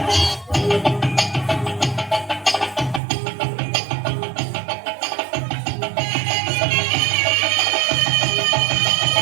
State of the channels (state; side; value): drops out; left; at 3.0 s